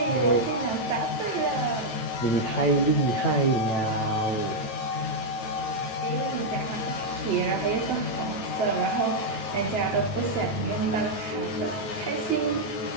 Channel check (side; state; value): right; late; 9.2 ms